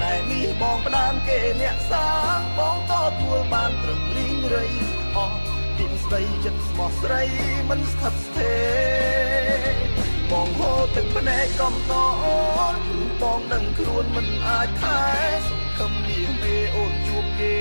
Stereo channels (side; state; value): both; inverted; correlation -1.00